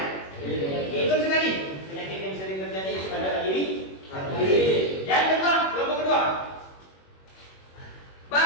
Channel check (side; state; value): right; late; 21 ms